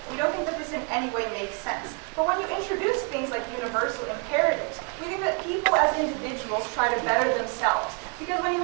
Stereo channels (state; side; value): quieter; left; 35.3 dB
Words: We don't think that this in any way makes sense. But when you introduce things like universal imperatives, we think that people as individuals try to better themselves. Because when you